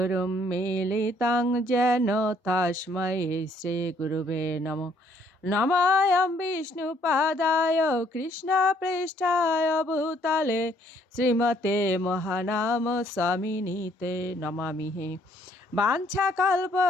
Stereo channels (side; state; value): both; normal; correlation 0.65